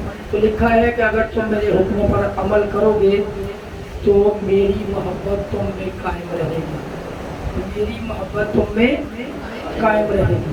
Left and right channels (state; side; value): identical; both; correlation 1.00